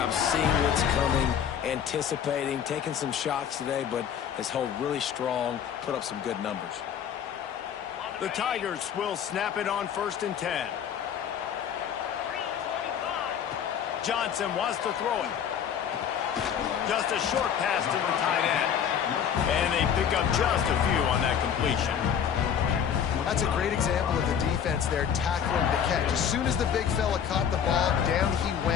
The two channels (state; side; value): quieter; right; 8.3 dB